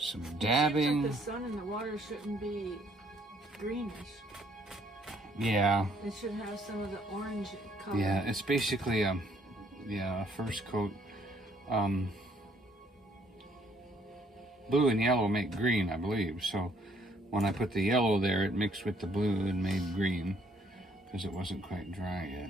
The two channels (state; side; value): normal; both; correlation 0.66